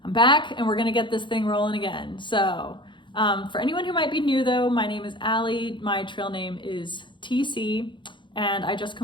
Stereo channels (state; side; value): late; right; 0.23 ms